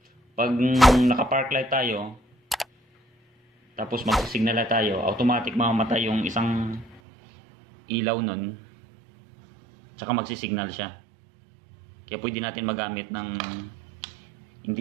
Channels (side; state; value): left; drops out; at 7.0 s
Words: Pag naka-park light tayo, tapos mag-signal light tayo, automatic mamamatay yung isang ilaw nun, tsaka magsisignal siya. Kaya pwede natin magamit ng hindi